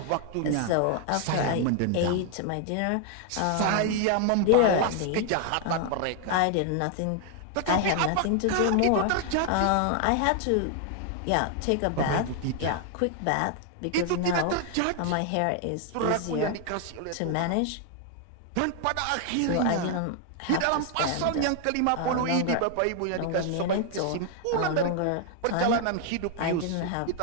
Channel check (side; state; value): both; different; correlation 0.00